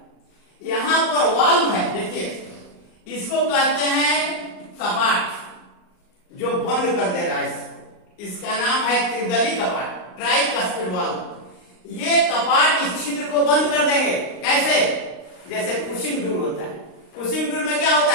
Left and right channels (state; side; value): late; right; 39 ms